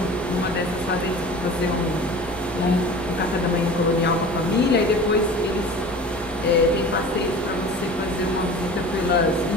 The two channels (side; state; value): both; normal; correlation 0.39